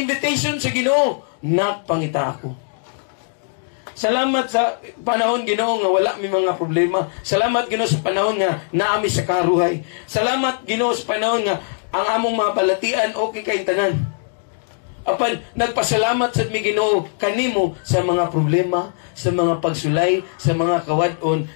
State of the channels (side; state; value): right; silent; digital silence